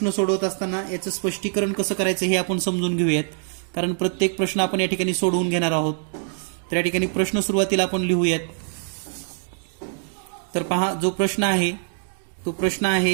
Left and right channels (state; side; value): silent; left; 63 dB below the other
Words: सोडवत असताना याचं स्पष्टीकरण कसं करायचं हे आपण समजून घेऊयात, कारण प्रत्येक प्रश्न आपण या ठिकाणी सोडवून घेणार आहोत. तर या ठिकाणी प्रश्न सुरुवातीला आपण लिहूयात. तर पहा, जो प्रश्न आहे तो प्रश्न